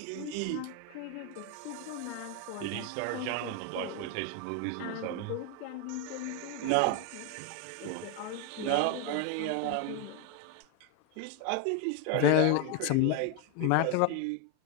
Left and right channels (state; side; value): different; both; correlation 0.01